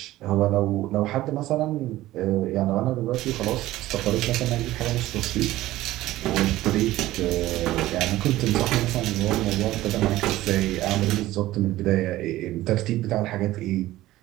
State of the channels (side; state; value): left; quieter; 16.0 dB